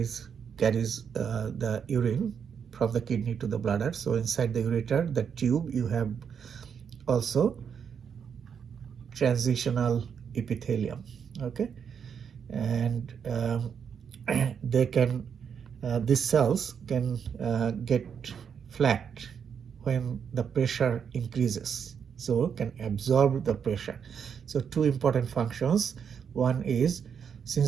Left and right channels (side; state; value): left; quieter; 7.3 dB